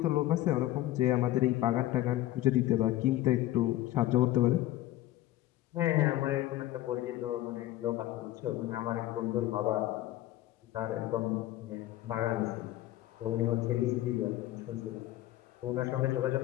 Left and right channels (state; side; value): quieter; right; 15.1 dB